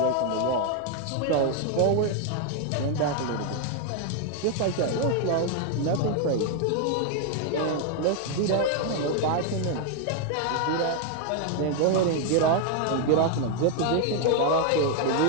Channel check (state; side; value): different; both; correlation 0.00